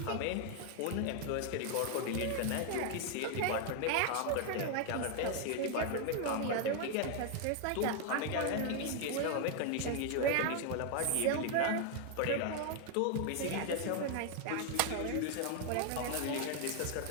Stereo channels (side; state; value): both; different; correlation 0.00